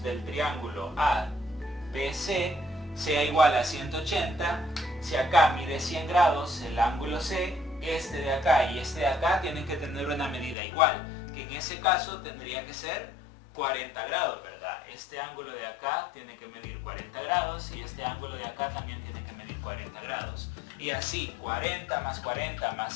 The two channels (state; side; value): drops out; right; at 10.6 s